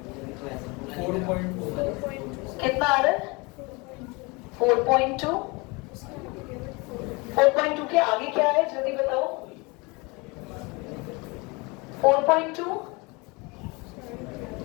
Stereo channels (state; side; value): quieter; right; 27.1 dB